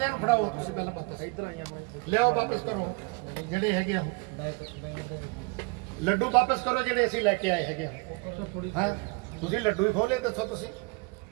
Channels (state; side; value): quieter; left; 29.1 dB